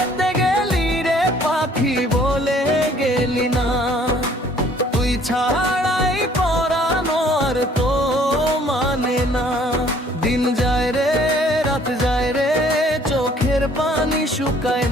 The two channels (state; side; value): normal; both; correlation 0.58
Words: গেলি রে পাখি বলে গেলি না, তুই ছাড়াই পরানো আর তো মানে না। দিন যায় রে রাত যায় রে চোখের পানি শুকায়